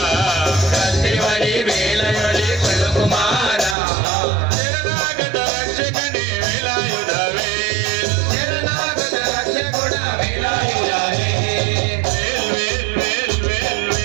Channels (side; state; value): left; drops out; at 3.8 s